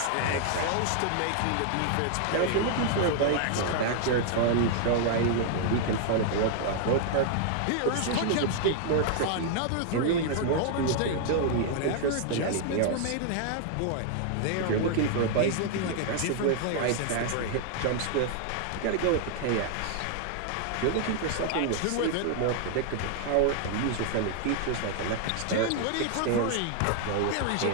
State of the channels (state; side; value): different; both; correlation 0.00